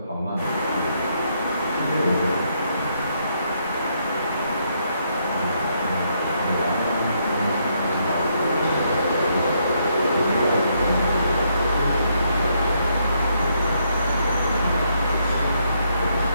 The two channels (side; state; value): both; inverted; correlation -0.75